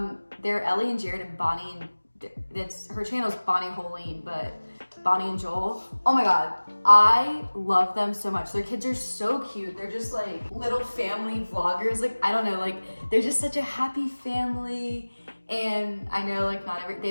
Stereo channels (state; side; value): inverted; both; correlation -1.00